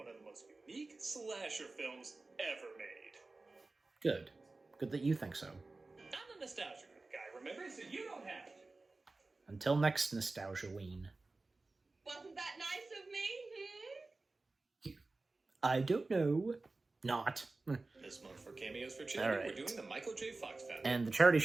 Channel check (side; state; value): left; quieter; 3.4 dB